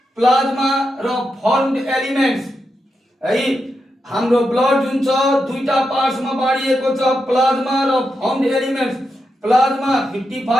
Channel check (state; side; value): normal; both; correlation 0.86